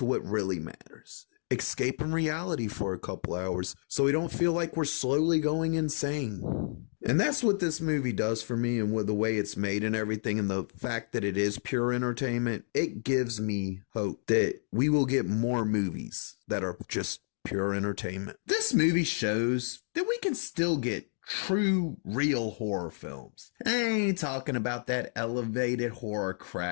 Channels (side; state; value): right; silent; digital silence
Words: what really matters. Escaping reality for a couple hours so we don't feel like we're slowly going insane. And that's what this movie does for me, and with the way it's made and everything, and the fact that it is pure entertainment, it gives me hope that we will get more movies that are just pure entertainment. This movie shows that we can still get true, real horror films. I ain't talking about that elevated horror